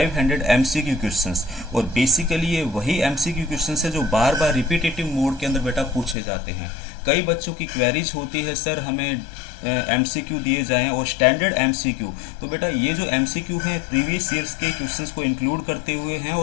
एमसीक्यू क्वेश्चंस। और बेसिकली ये वही एमसीक्यू क्वेश्चंस है जो बार बार रिपीटेटिव मोड के अंदर बेटा पूछे जाते हैं। कई बच्चों की क्वेरीज होती है सर हमें एमसीक्यू दिए जाएं और स्टैंडर्ड एमसीक्यू। तो बेटा ये जो एमसीक्यू हैं प्रीवियस ईयर्स के क्वेश्चंस को इंक्लूड करते हुए हैं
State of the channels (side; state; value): right; drops out; at 6.2 s